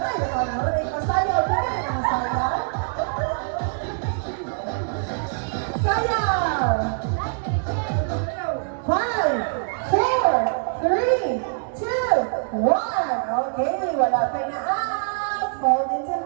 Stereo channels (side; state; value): left; silent; 59 dB below the other